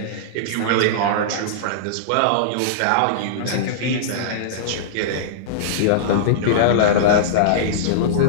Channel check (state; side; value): different; both; correlation -0.03